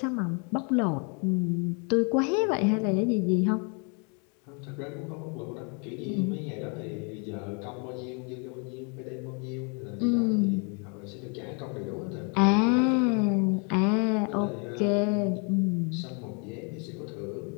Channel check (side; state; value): right; quieter; 36.0 dB